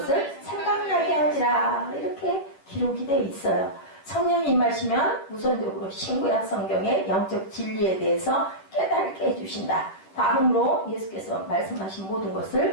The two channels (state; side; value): late; right; 11 ms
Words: 생각나게 하리라. 이렇게 기록이 되어 있어요. 성령이 임하시면 우선적으로 신구약 성경의 영적 진리에 대해서 깨닫게 해주신다. 다음으로 예수께서 말씀하신 모든